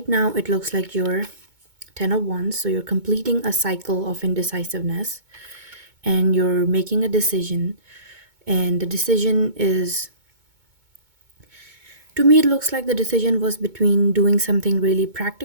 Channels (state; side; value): late; left; 2.2 ms